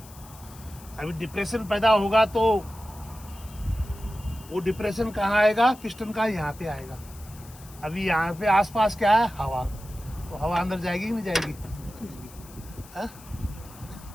अभी डिप्रेशन पैदा होगा तो वो डिप्रेशन कहाँ आएगा, पिस्टन का यहाँ पे आएगा। अभी यहाँ पे आसपास क्या है, हवा, तो हवा अंदर जाएगी कि नहीं जाएगी, है?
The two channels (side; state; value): left; noise; hiss, 21 dB below the sound